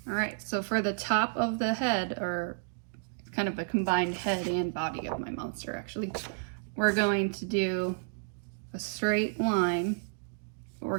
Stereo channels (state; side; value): silent; left; digital silence